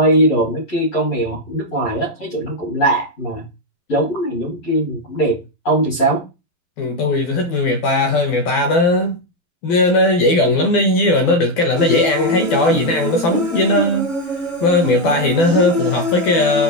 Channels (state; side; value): late; right; 12 ms